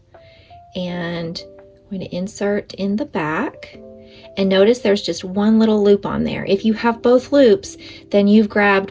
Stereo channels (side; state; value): both; identical; correlation 1.00